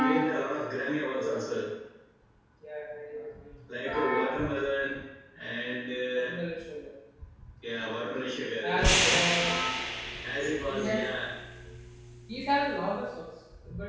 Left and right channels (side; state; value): both; identical; correlation 1.00